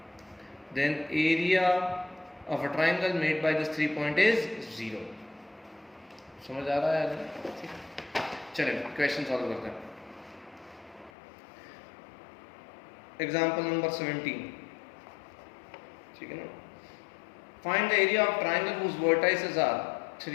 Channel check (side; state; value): right; drops out; at 11.1 s